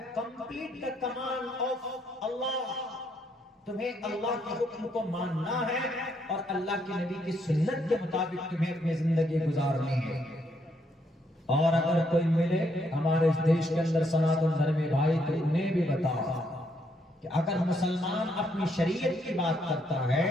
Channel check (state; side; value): normal; both; correlation 0.74